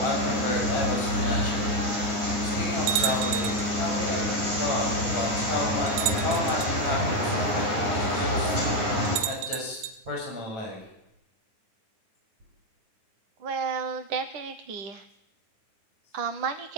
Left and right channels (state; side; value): late; left; 9.5 ms